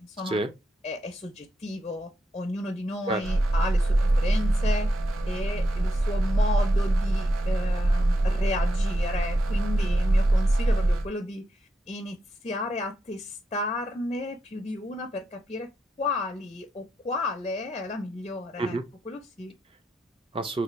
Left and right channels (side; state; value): both; normal; correlation 0.85